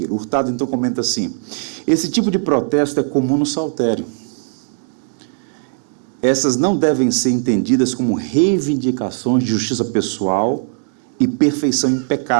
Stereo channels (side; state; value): left; silent; digital silence